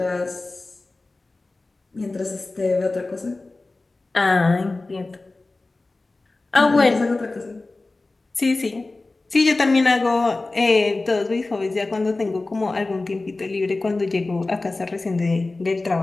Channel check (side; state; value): right; quieter; 3.2 dB